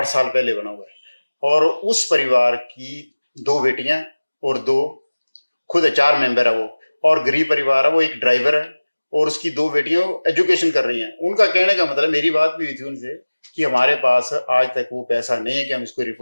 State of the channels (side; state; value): both; inverted; correlation -1.00